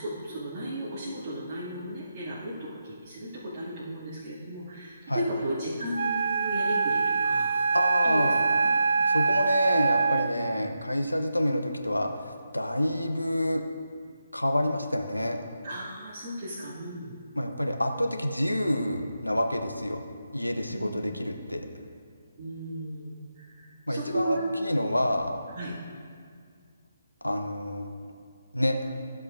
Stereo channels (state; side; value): inverted; both; correlation -0.88